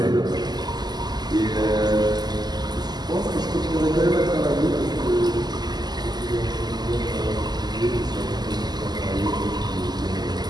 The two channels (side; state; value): left; late; 0.20 ms